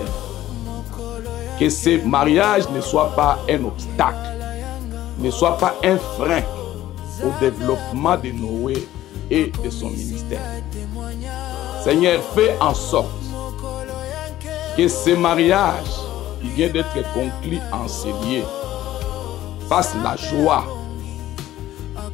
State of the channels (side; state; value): right; quieter; 14.1 dB